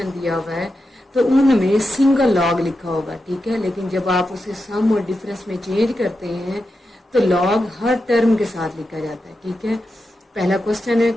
दिया हुआ है तो उनमें सिंगल लॉग लिखा होगा, ठीक है। लेकिन जब आप उसे सम और डिफरेंस में चेंज करते हैं तो लॉग हर टर्म के साथ लिखा जाता है, ठीक है। पहला क्वेश्चन है,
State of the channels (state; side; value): normal; both; correlation 0.89